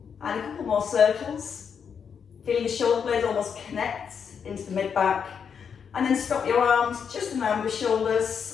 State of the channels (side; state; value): right; quieter; 6.9 dB